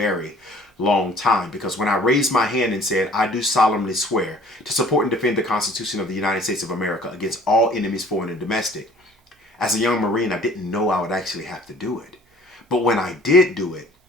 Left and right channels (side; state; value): both; normal; correlation 0.52